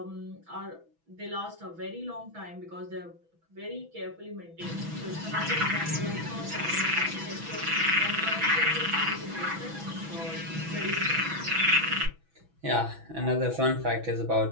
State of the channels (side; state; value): left; late; 6.1 ms